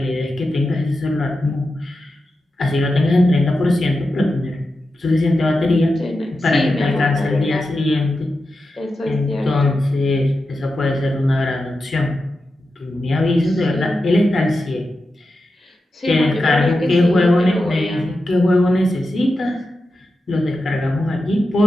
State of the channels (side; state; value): both; normal; correlation 0.90